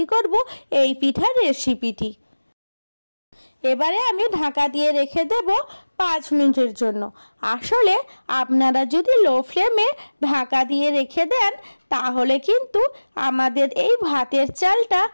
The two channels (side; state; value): both; inverted; correlation -1.00